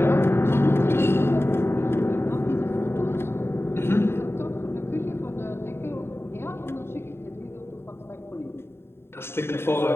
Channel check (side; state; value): right; late; 0.11 ms